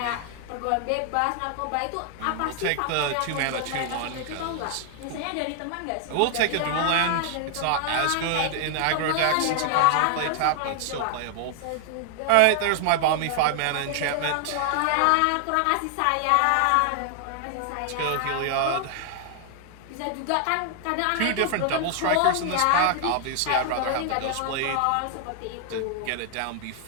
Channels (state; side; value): different; both; correlation 0.00